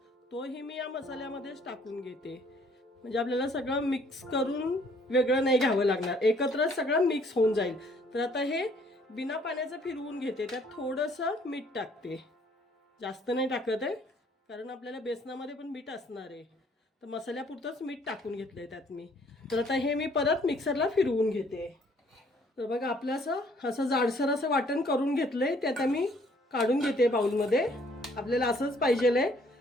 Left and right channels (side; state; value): both; normal; correlation 0.62